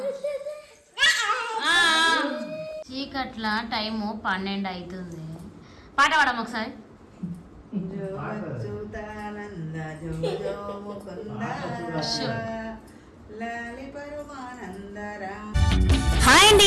చీకట్ల టైము 12 అవుతుంది. పాట పాడము ఒకసారి. హాయ్ అండి,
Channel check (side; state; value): both; identical; correlation 1.00